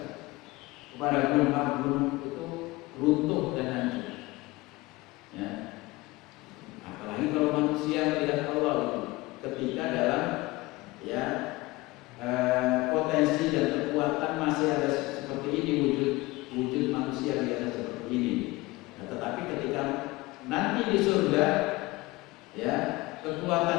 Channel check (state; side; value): quieter; right; 21.1 dB